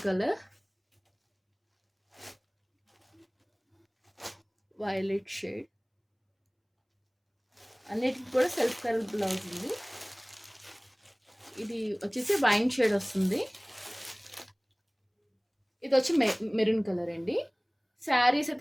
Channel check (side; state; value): both; identical; correlation 1.00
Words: colour, violet shade, అన్నిటికి కూడా సెల్ఫ్ కలర్ బ్లౌజ్ ఉంది. ఇది వచ్చేసి వైన్ షేడ్ వస్తుంది. ఇది వచ్చి మెరూన్ కలర్ అండి. శారీస్